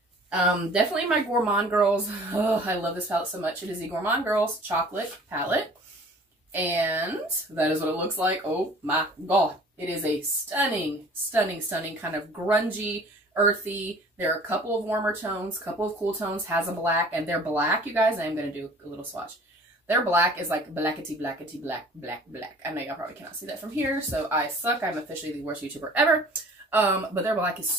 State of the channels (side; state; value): both; normal; correlation 0.48